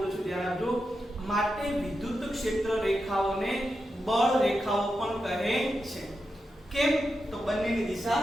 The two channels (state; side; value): normal; both; correlation 0.88